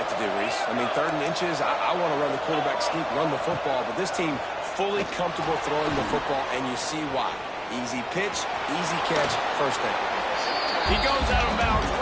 to do, Reese. I mean, third and inches, I want to run the quarterback sneak, run the football, but this team fully comfortable throwing the football, and you see why. Easy pitch, easy catch, first down. He goes out of bounds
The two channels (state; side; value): identical; both; correlation 1.00